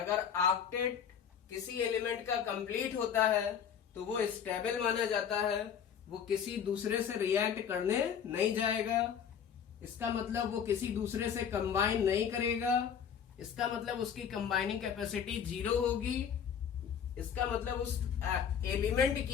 ऑक्टेट किसी एलिमेंट का कंप्लीट होता है तो वो स्टेबल माना जाता है, वो किसी दूसरे से रिएक्ट करने नहीं जाएगा. इसका मतलब वो किसी दूसरे से कंबाइन नहीं करेगा. इसका मतलब उसकी कंबाइनिंग कैपेसिटी 0 होगी. इसका मतलब उस एलिमेंट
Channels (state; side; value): quieter; right; 7.9 dB